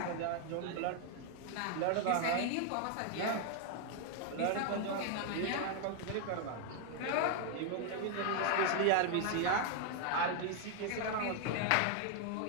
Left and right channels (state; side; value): different; both; correlation 0.00